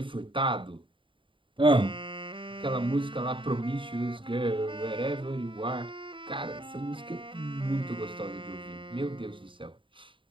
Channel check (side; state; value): left; late; 0.25 ms